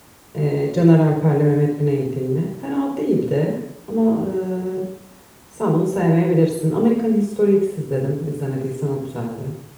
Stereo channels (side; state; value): both; identical; correlation 1.00